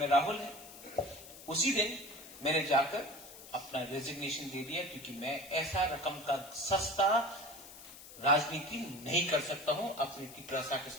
राहुल है, उसी दिन मैंने जाकर अपना रेजिग्नेशन दे दिया, क्योंकि मैं ऐसा रकम का सस्ता राजनीति नहीं कर सकता हूं, अपनी टिपरासा के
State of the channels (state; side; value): noise; left; hiss, 16 dB below the sound